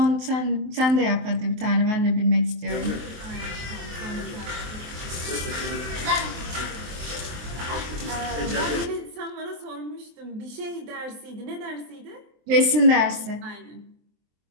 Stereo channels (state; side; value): late; left; 23 ms